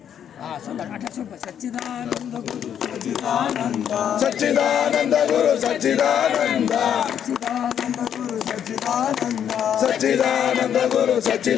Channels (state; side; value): quieter; right; 9.1 dB